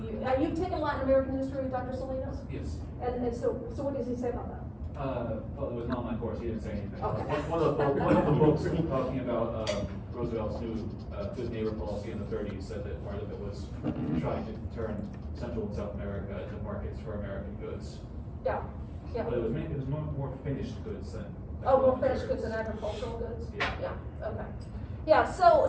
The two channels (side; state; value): both; identical; correlation 1.00